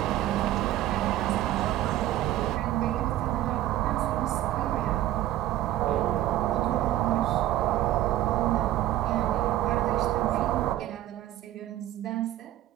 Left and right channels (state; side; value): quieter; left; 13.8 dB